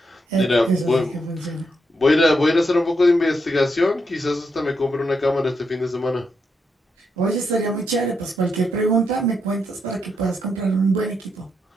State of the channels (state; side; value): normal; both; correlation 0.81